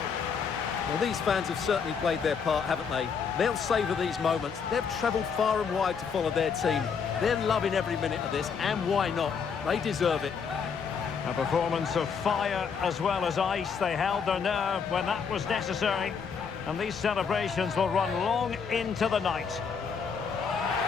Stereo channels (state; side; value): quieter; right; 6.2 dB